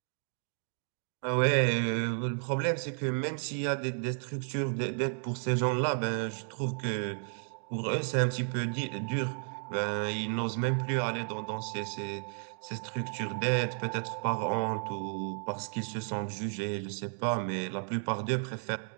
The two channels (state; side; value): silent; left; 56 dB below the other